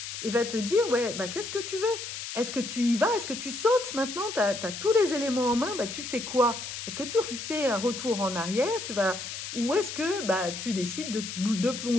et va te dire, ouais, bah qu'est-ce que tu veux? Est-ce que tu y vas? Est-ce que tu sautes maintenant? Tu as tous les éléments en main, bah tu fais quoi? Est-ce que tu fais un retour en arrière? Ou est-ce que bah, tu décides de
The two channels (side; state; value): left; noise; hiss, 7 dB below the sound